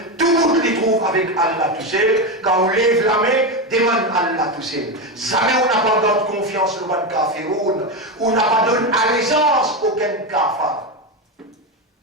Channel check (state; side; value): normal; both; correlation 0.13